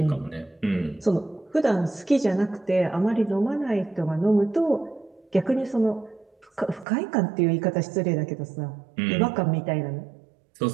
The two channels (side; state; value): left; drops out; at 6.9 s